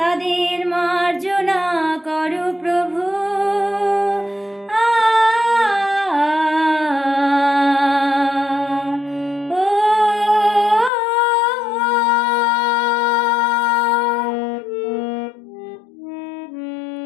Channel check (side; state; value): right; drops out; at 10.9 s